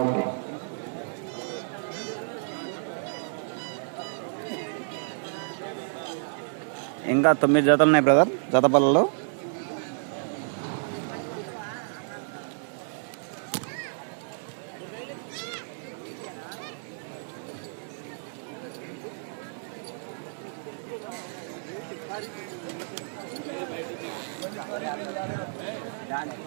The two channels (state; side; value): silent; left; 58 dB below the other